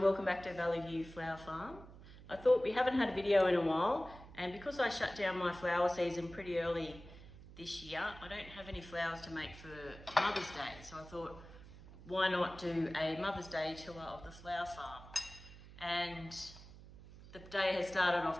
welcome back to Valley View Flower Farm. I thought we haven't had a video in a while, and because I shut down my flower season pretty early this year, I don't have any flowers to make for Mother's Day. So I thought, why not do a Mother's Day tour of the flower farm? And the day has started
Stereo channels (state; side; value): noise; right; hum, 17 dB below the sound